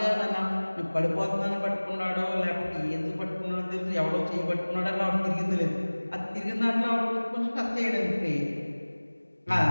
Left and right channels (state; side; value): inverted; both; correlation -1.00